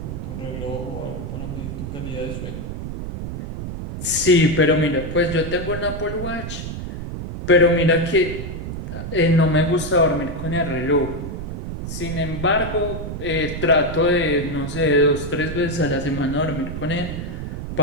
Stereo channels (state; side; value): noise; right; rumble, 6 dB below the sound